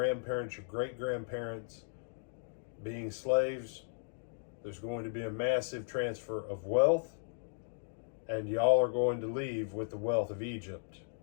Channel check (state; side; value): silent; right; digital silence